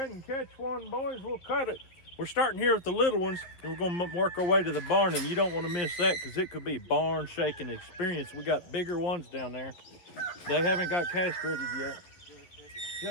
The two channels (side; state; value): right; late; 11 ms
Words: and catch one, boys. We'll cut it. We're starting here with the little ones, and we're going to work our way to the barn, and you don't want to miss that because it could be barn shaking experience. We got bigger ones down there. They haven't got castrated yet.